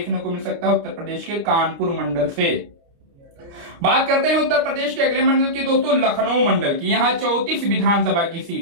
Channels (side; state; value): left; late; 29 ms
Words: को मिल सकता है उत्तर प्रदेश के कानपुर मंडल से। बात करते हैं उत्तर प्रदेश के अगले मंडल की दोस्तों, लखनऊ मंडल की। यहां 34 विधानसभा की